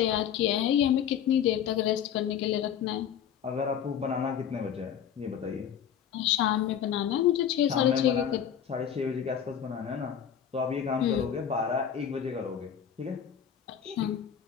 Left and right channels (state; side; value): quieter; right; 8.8 dB